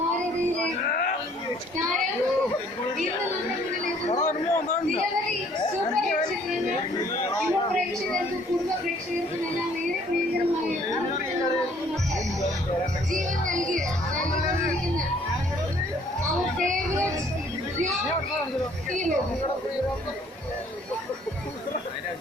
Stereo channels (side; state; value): both; normal; correlation 0.60